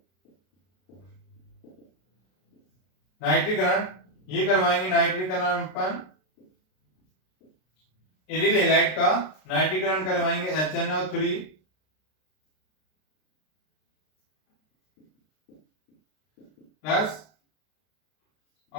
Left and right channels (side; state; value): right; late; 32 ms